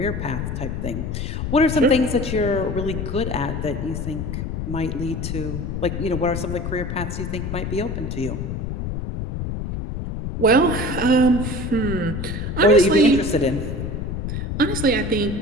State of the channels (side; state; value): left; noise; rumble, 4 dB below the sound